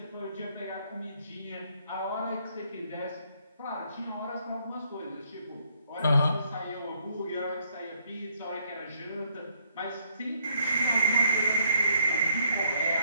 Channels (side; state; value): both; inverted; correlation -0.70